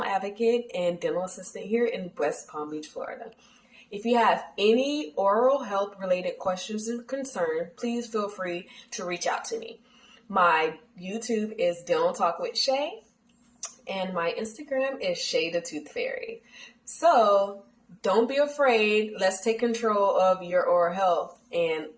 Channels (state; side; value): identical; both; correlation 1.00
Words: advocate and dental assistant here in West Palm Beach, Florida. If you have any oral health related questions and concerns, please feel free to reach out to me. My YouTube is Dental Talk with Shay and my Instagram is Shaythetoothfairy. So don't be afraid. Let's take control of your oral health and